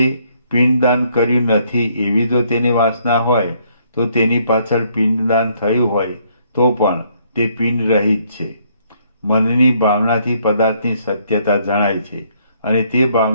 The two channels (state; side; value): inverted; both; correlation -0.68